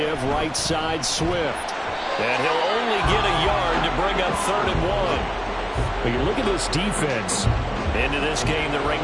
right side Swift. And he'll only get a yard to bring up 3rd and 1. But you look at this defense. Into this game, they're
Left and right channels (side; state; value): both; identical; correlation 1.00